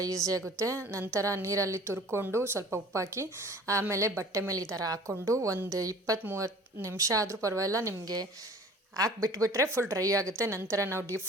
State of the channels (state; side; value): normal; both; correlation 0.47